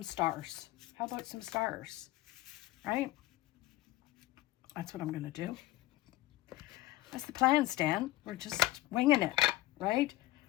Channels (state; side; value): quieter; right; 17.0 dB